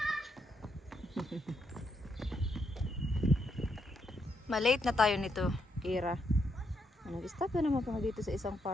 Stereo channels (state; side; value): normal; both; correlation 0.79